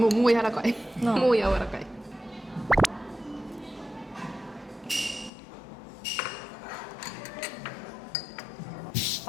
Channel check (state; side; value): drops out; right; at 5.3 s